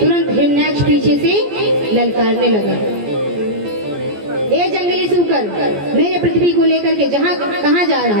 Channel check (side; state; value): left; late; 14 ms